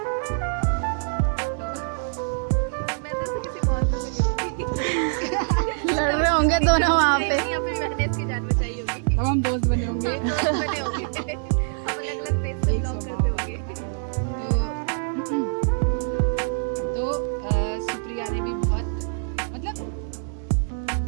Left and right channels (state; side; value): silent; left; digital silence